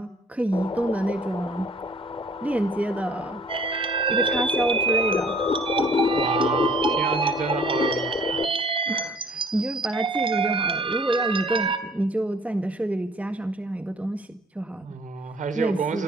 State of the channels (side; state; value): both; normal; correlation 0.55